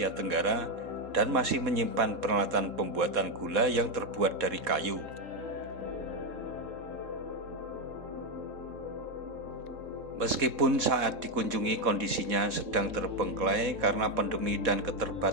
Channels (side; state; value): left; late; 3.7 ms